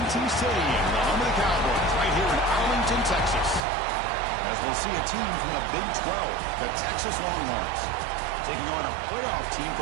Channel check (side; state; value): left; drops out; at 3.6 s